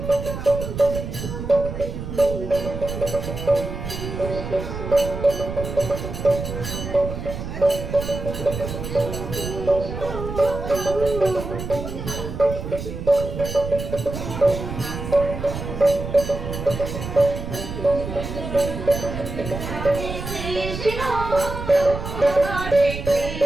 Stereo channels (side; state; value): right; noise; rumble, 7 dB below the sound